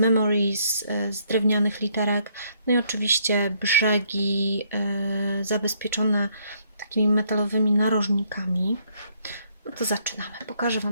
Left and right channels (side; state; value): both; inverted; correlation -0.69